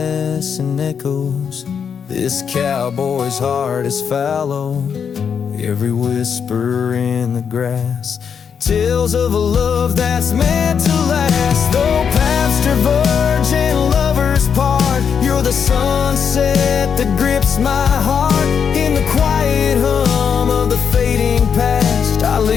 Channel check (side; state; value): right; quieter; 7.0 dB